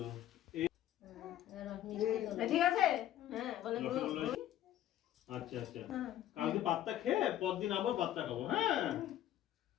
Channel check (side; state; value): right; quieter; 12.4 dB